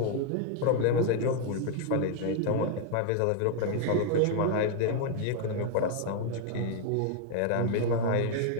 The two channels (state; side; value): different; both; correlation 0.00